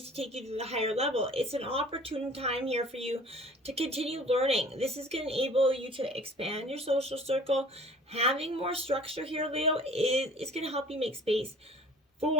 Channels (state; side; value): normal; both; correlation 0.48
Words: to take you to the higher level. It's an opportune time here for you to continue learning. This is going to enable you to expand your social circle. Having more structure here, Leo, is going to help you make space